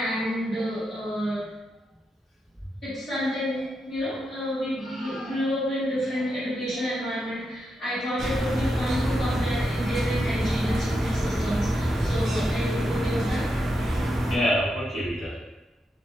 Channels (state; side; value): normal; both; correlation 0.84